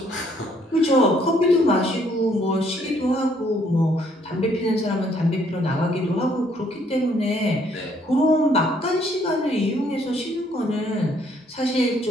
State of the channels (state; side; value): normal; both; correlation 0.66